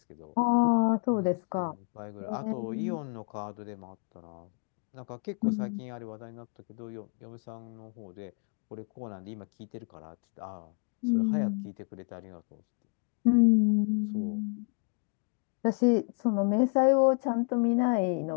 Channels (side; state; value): right; quieter; 35.3 dB